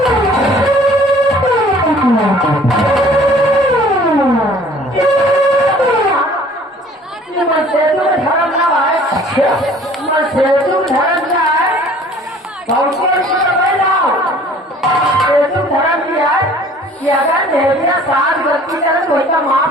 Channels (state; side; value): normal; both; correlation 0.52